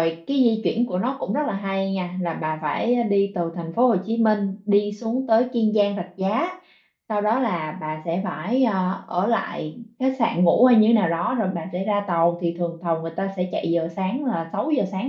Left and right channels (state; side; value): identical; both; correlation 1.00